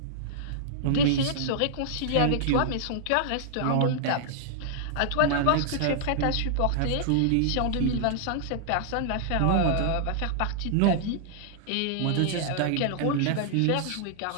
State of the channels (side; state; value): both; different; correlation -0.01